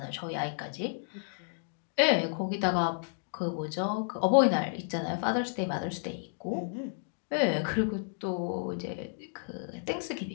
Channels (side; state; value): right; silent; digital silence